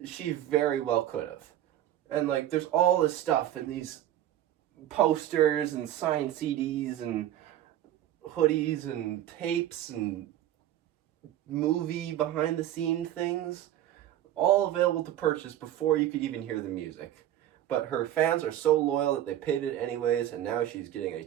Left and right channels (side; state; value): left; quieter; 12.4 dB